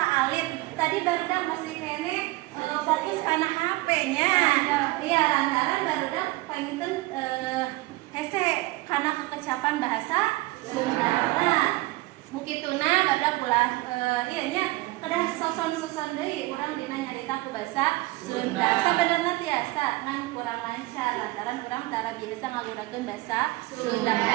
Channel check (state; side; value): quieter; left; 20.4 dB